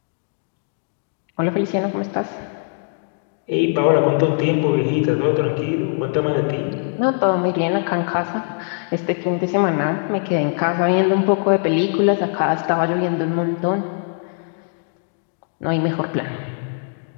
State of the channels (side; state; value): right; silent; 65 dB below the other